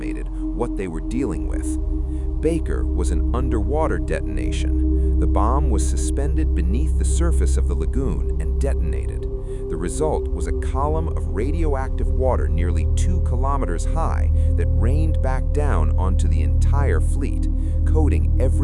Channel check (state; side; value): identical; both; correlation 1.00